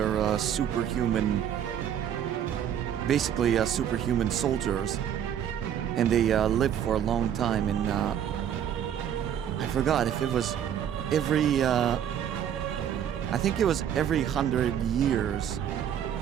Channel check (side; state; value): left; quieter; 9.4 dB